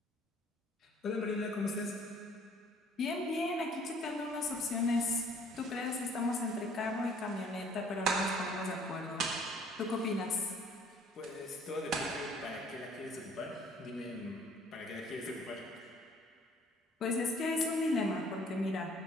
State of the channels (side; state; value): both; normal; correlation 0.58